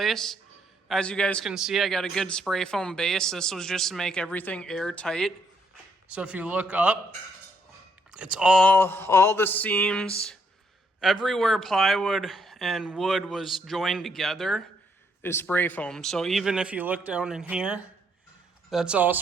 As you guys can see, I got a good spray foam base. This was just to make everything airtight. So if you look up, it's all the seams, everywhere plywood and wood was joined together is spray foam. So even if you look down in here, that's all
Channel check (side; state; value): both; normal; correlation 0.72